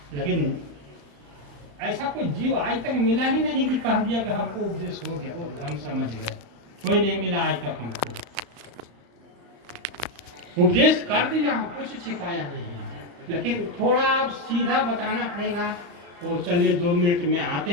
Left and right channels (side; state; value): left; late; 35 ms